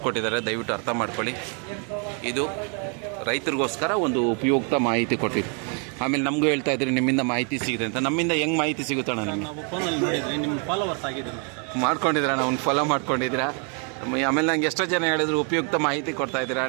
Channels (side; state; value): left; quieter; 38.4 dB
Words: ದಯವಿಟ್ಟು ಅರ್ಥ ಮಾಡ್ಕೊಳ್ಳಿ. ಇದು ರೈತರಿಗೋಸ್ಕರ ಒಂದು ಉಪಯುಕ್ತ ಮಾಹಿತಿ ಕೊಟ್ಟಿದ್ದು. ಆಮೇಲೆ ನಮಗೂ ಹೇಳ್ತಾ ಇದ್ರಿ ನಿಮ್ಮಿಂದ ಮಾಹಿತಿ ಸಿಗಿದೆ ಅಂತ. ನಮ್ಮಿಂದ ಹೆಂಗೆ ಮಾಹಿತಿ ಸಿಗುತ್ತಣ್ಣ? ನಿಮಗೆ ಮಾಡ್ಕೊಂಡಿದ್ದೀರಾ, ಅವ್ನು ಫಾಲೋ ಮಾಡ್ಕೊಂಡಿದ್ದೀರಾ. ಆಮೇಲೆ ನಂಗೆ ಎಷ್ಟೋ ಜನ ಹೇಳಿದ್ರು ಉಪಯುಕ್ತ ಮಾಹಿತಿ ಕೊಡ್ತಾ ಇದ್ದೀರಾ